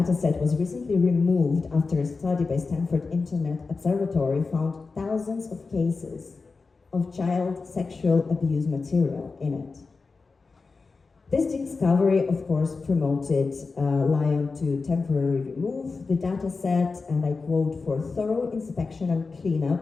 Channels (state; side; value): quieter; right; 4.3 dB